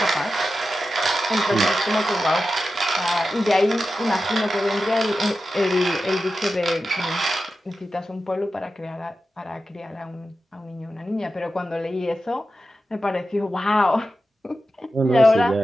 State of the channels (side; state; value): both; normal; correlation 0.92